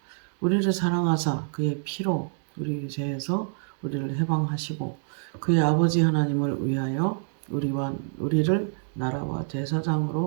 우리를 사랑하사 그의 피로 우리 죄에서 우리를 해방하시고 그의 아버지 하나님을 위하여 우리를 나라와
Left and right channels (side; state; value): left; silent; digital silence